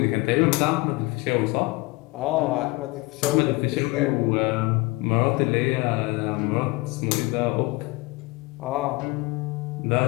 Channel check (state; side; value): quieter; right; 23.4 dB